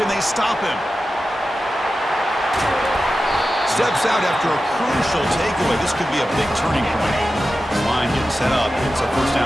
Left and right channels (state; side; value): normal; both; correlation 0.93